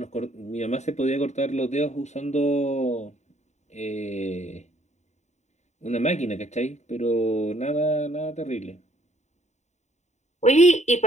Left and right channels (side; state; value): right; late; 0.34 ms